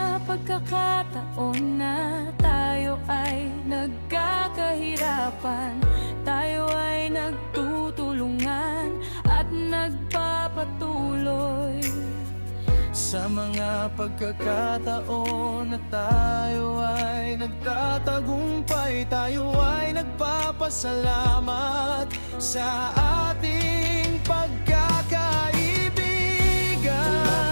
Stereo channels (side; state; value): both; inverted; correlation -1.00